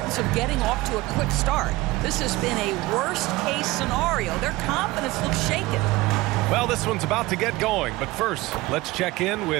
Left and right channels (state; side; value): quieter; left; 19.9 dB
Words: of getting off to a quick start. This has been a worst-case scenario. Their confidence looks shaken. Well, this one's about to get going, but first, let's check in